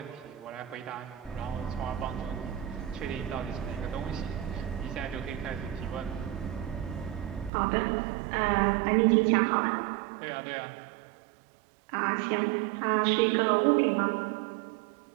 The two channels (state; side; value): drops out; left; at 7.5 s